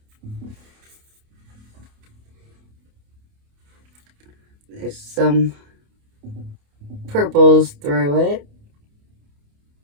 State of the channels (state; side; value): late; left; 28 ms